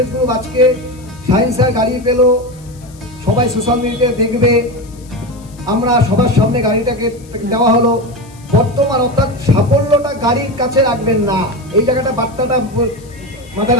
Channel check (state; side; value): noise; left; hiss, 25 dB below the sound